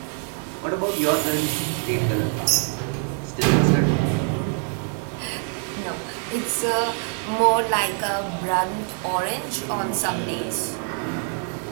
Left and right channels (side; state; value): left; quieter; 37.7 dB